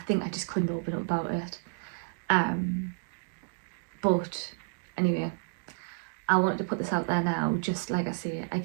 think I just couldn't open up about it. But anyway, I wanted to put this out there now. Just like I say, I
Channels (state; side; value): silent; left; digital silence